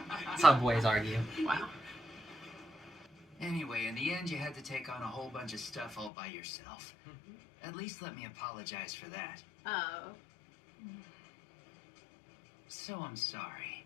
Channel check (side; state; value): right; drops out; at 6.1 s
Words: That's how boys argue. Wow. Anyway, in the end, you had to take on a whole bunch of stuff all by yourself. At least let me apologize for that. Oh. So I'm sorry.